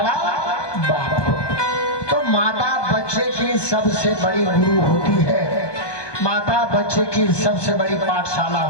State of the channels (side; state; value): right; late; 1.2 ms